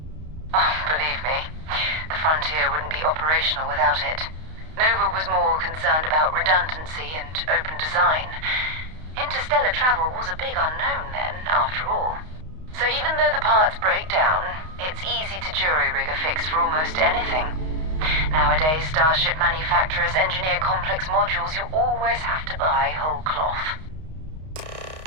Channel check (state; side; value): late; left; 32 ms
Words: Oh, believe me, the frontier wouldn't be operational without it. Nova was more concerned about redundancy and open design. Interstellar travel was a big unknown then, after all. So even though the parts break down, it's easy to jury-rig a fix for almost anything. Nowadays, starship manufacturers engineer complex modules you always have to buy whole cloth.